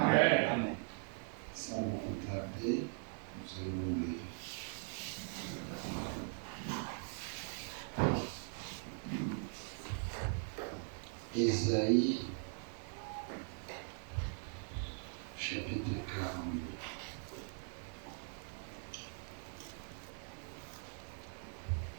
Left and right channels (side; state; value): left; silent; 51 dB below the other